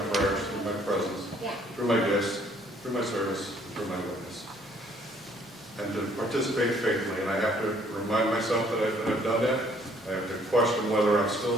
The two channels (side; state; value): both; normal; correlation 0.62